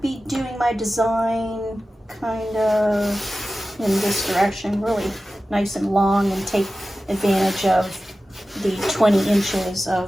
be doing my design kind of in this direction, really nice and long, and take advantage of the 20 inches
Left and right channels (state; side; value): normal; both; correlation 0.95